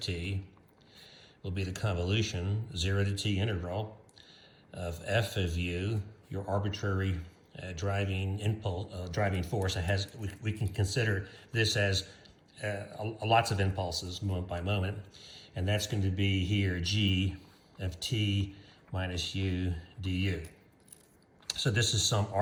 will be the convolution, 0 to t integral of f of u, your arbitrary driving impulse, driving force. It has, we can consider this as lots of impulses, moment by moment, and that's going to be here g of t minus u du. So this is some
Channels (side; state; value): both; identical; correlation 1.00